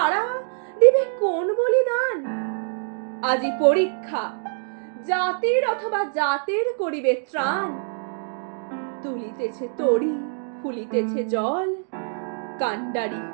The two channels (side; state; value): left; silent; digital silence